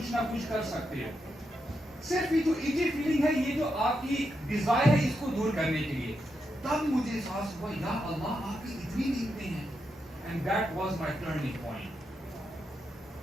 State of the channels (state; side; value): normal; both; correlation 0.84